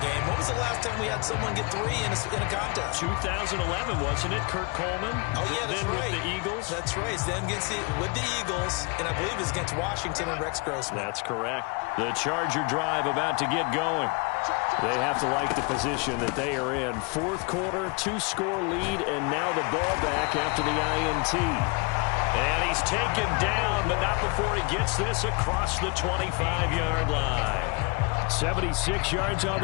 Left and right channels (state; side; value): quieter; right; 30.3 dB